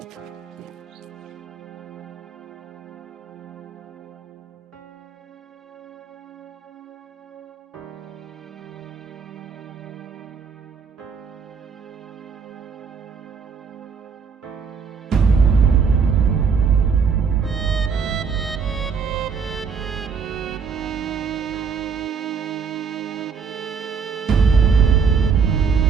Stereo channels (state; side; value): quieter; left; 5.9 dB